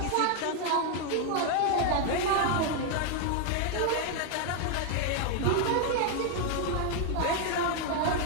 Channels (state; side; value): different; both; correlation 0.00